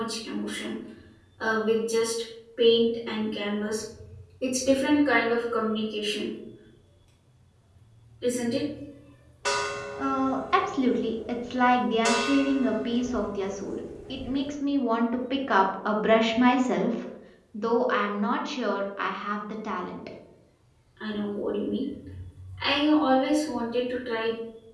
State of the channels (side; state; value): both; identical; correlation 1.00